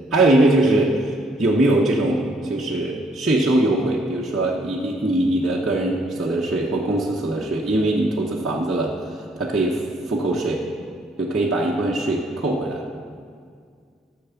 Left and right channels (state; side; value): normal; both; correlation 0.66